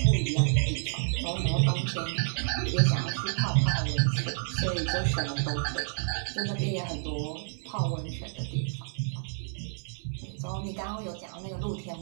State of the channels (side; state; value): left; silent; 56 dB below the other